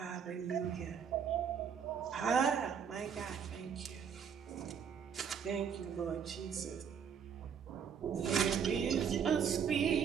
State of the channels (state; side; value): quieter; left; 7.3 dB